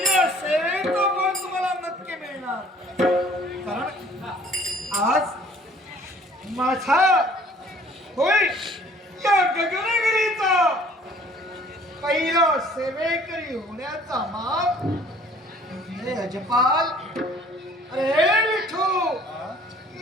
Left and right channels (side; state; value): both; normal; correlation 0.55